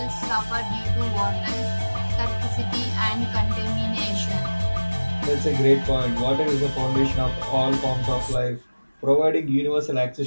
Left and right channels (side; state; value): both; inverted; correlation -1.00